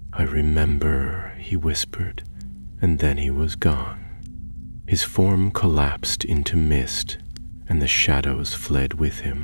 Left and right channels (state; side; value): inverted; both; correlation -1.00